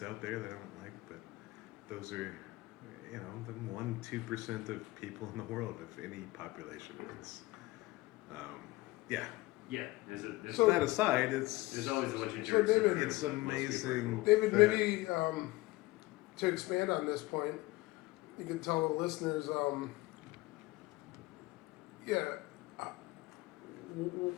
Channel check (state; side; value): quieter; right; 20.1 dB